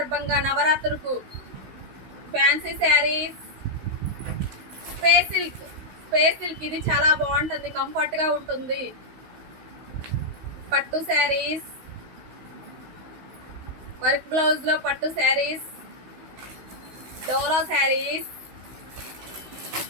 నవరాత్రులకు ఫ్యాన్సీ శారీస్, స్పేస్ సిల్క్ ఇది చాలా బాగుంటుంది, కంఫర్ట్గా ఉంటుంది. పట్టు శారీస్, వర్క్ బ్లౌజ్లో పట్టు శారీస్, డోలా శారీస్,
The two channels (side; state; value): left; late; 16 ms